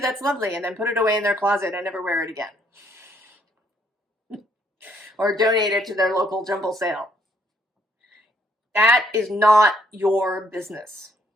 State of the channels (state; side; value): normal; both; correlation 0.69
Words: that's lovely, and then put it away in their closet and never wear it again. Or donate it to their local jumble sale. That is not your business.